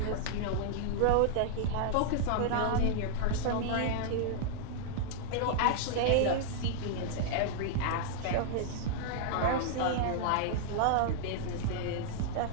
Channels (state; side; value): different; both; correlation -0.01